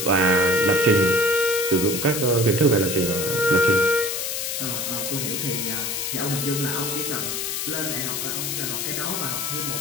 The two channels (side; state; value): left; noise; hiss, 2 dB below the sound